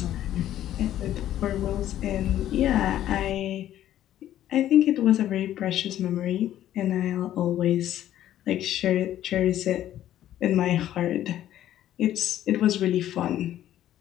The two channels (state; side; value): quieter; right; 12.3 dB